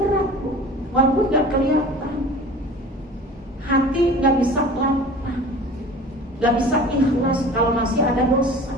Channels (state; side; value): normal; both; correlation 0.41